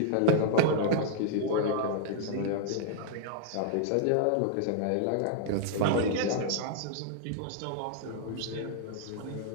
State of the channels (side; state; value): both; different; correlation -0.01